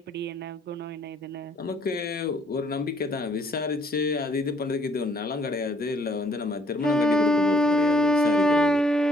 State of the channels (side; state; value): both; normal; correlation 0.64